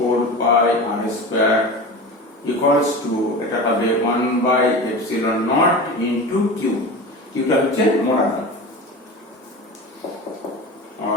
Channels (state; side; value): normal; both; correlation 0.30